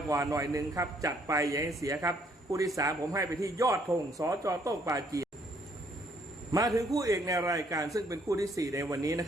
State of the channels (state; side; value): normal; both; correlation 0.66